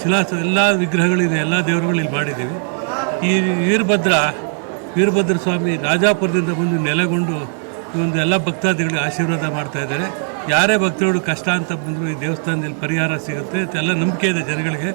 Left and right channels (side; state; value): left; silent; 61 dB below the other